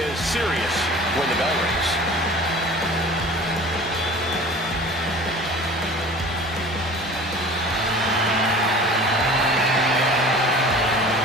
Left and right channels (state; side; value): normal; both; correlation 0.42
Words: serious when the bell rings.